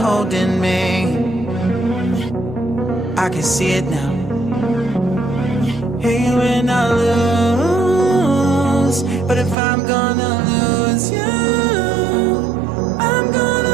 me. I can see it now. Hey, when I lose, but if I'm gonna lose you, I'm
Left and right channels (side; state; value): left; drops out; at 9.6 s